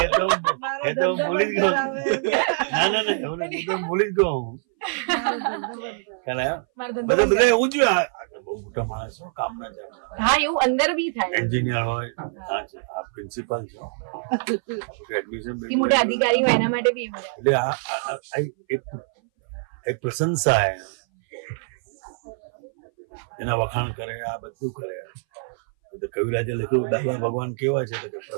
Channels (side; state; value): left; silent; 60 dB below the other